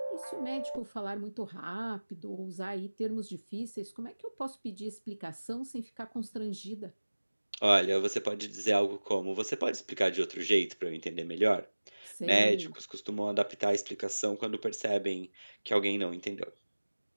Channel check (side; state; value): both; inverted; correlation -1.00